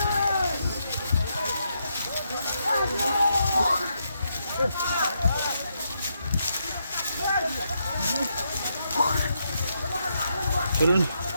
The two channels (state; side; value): inverted; both; correlation -0.80